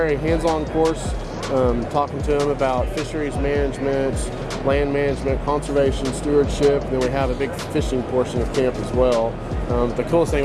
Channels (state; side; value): identical; both; correlation 1.00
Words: hands-on course, talking to them about fisheries management, land management, conservation, stewardship. And then we have a big fishing portion of camp as well. The coolest thing